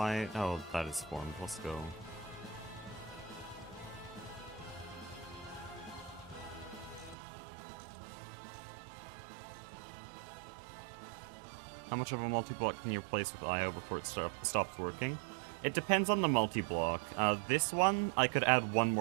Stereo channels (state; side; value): drops out; left; at 7.2 s